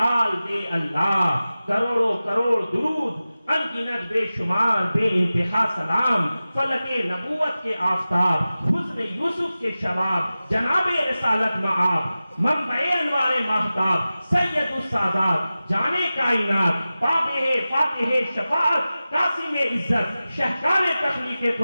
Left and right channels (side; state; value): both; inverted; correlation -0.96